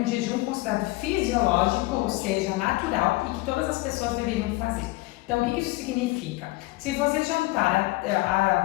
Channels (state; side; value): quieter; right; 21.4 dB